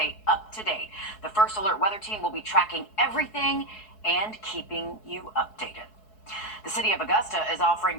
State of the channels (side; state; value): right; late; 4.7 ms